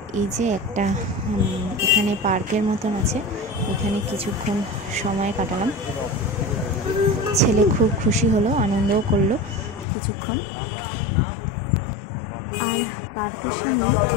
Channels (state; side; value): drops out; right; at 9.9 s